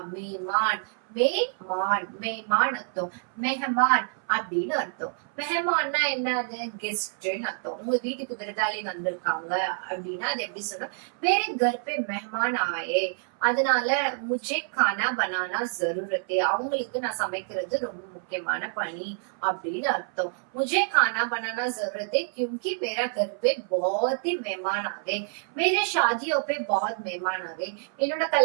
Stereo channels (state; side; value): silent; left; 60 dB below the other